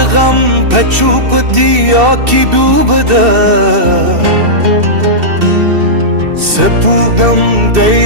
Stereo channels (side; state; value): left; late; 2.7 ms